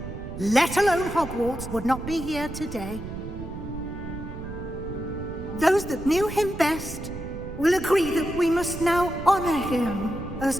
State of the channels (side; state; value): right; noise; rumble, 10 dB below the sound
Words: let alone Hogwarts, would not be here today. Those that knew him best will agree that we must now honor him as